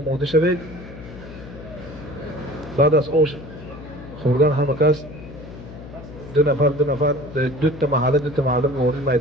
شوید. بعد از آش خوردن همه کس دو نفر دو تا محله وارد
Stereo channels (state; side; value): noise; left; hum, 15 dB below the sound